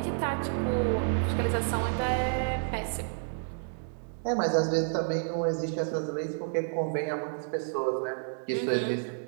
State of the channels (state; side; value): silent; left; digital silence